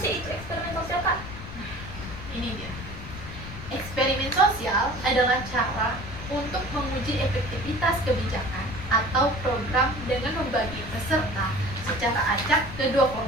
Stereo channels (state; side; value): noise; left; rumble, 11 dB below the sound